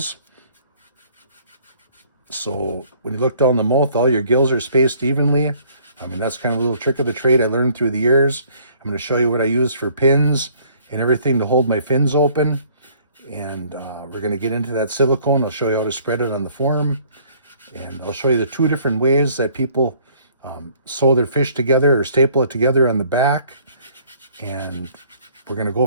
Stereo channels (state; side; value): inverted; both; correlation -0.59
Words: So when you look down the mouth, all your gills are spaced evenly. I mean, that's kind of a little trick of the trade I learned through the years. I'm going to show you what I use for pins and everything to hold my fins open. And we're going to get into that silicone. I'll show you how to spread it on the form. And I'll show you the two different ways that people sew their fish together or staple it together on the back. And we're going to